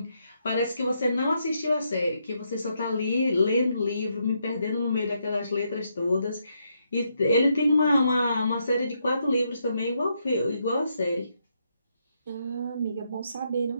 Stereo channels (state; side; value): inverted; both; correlation -0.78